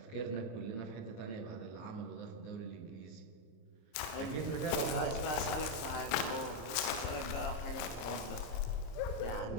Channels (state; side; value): late; right; 26 ms